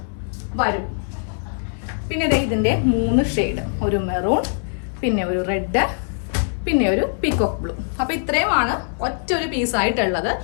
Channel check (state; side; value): silent; right; 63 dB below the other